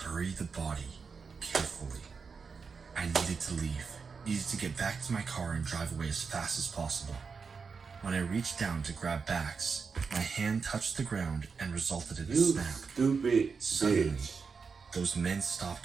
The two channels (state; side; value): quieter; left; 5.3 dB